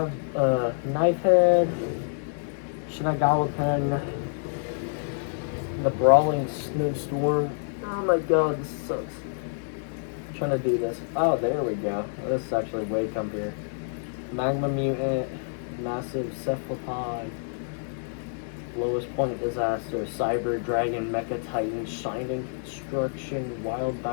Knifehead, Shinagawa Pen, the Brawling Snowstorm. Oh my god, this sucks. trying to do this. Oh, there we go. This is actually way comfier. Magma mutant, massive cephalopod, lowest point disaster, cyber dragon, mecha titan, shining construction, wild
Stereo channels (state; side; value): silent; right; 60 dB below the other